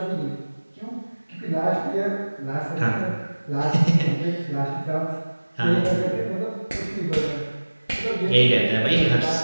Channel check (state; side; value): inverted; both; correlation -1.00